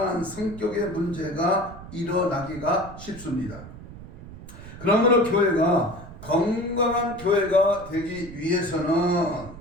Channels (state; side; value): noise; right; rumble, 15 dB below the sound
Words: 성격의 문제가 일어나기가 쉽습니다. 그러므로 교회가 건강한 교회가 되기 위해서는